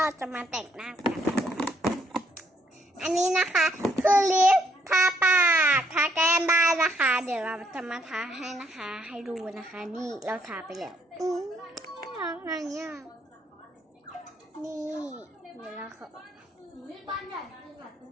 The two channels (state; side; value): normal; both; correlation 0.70